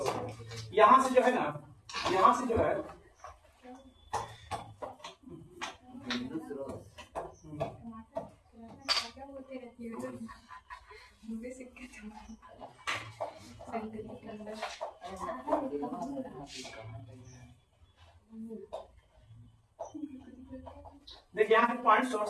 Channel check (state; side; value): identical; both; correlation 1.00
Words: यहां से जो है ना, यहां से जो है देखिए यहाँ पे पॉइंट